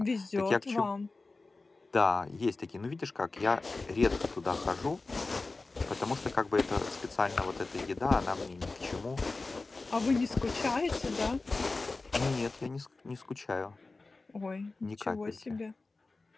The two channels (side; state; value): right; quieter; 3.5 dB